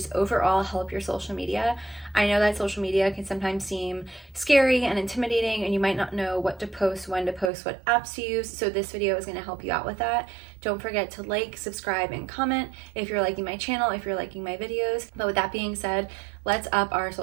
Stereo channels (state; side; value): drops out; left; at 7.5 s